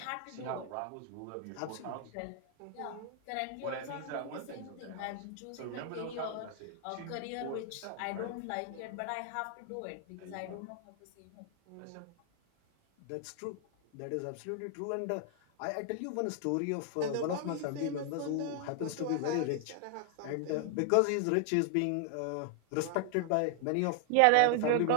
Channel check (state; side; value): different; both; correlation 0.00